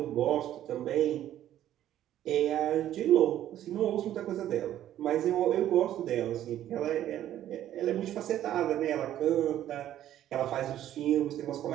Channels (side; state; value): left; quieter; 12.1 dB